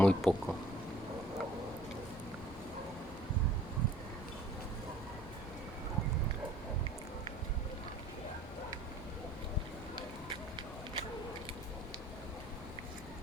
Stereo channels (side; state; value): both; normal; correlation 0.53